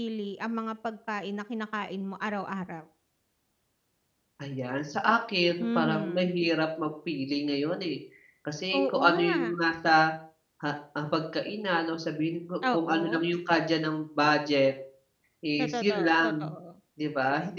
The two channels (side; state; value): both; identical; correlation 1.00